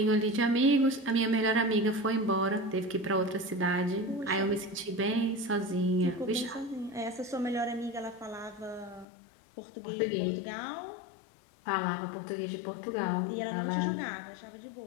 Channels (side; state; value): right; drops out; at 9.1 s